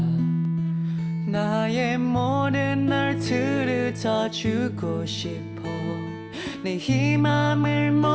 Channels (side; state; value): both; identical; correlation 1.00